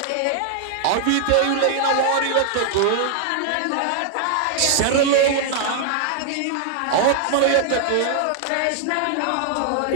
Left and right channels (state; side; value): different; both; correlation 0.00